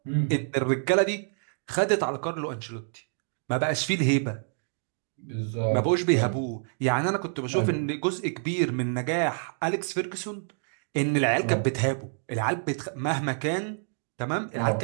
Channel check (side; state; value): left; silent; digital silence